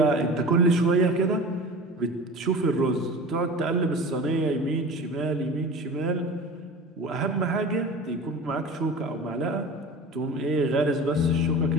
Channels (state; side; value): normal; both; correlation 0.36